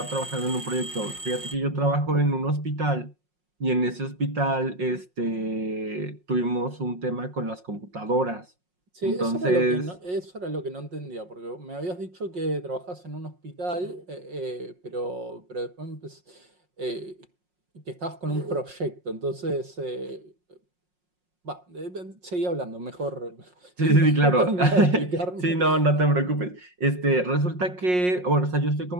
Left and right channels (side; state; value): left; late; 5.5 ms